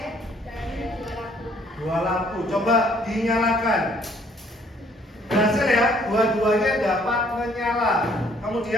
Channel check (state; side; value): normal; both; correlation 0.62